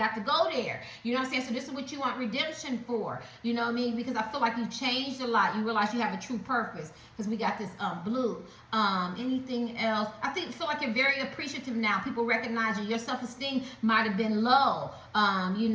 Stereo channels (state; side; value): identical; both; correlation 1.00